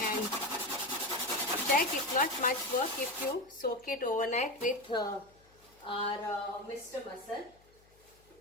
check, it's not much work if you soak it overnight with our Mr. Muscle,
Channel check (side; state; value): left; noise; hum, 30 dB below the sound